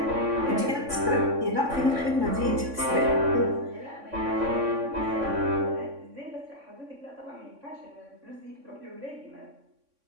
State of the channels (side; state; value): left; late; 3.6 ms